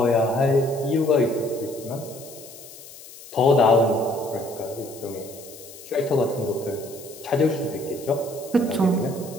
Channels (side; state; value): left; noise; hiss, 17 dB below the sound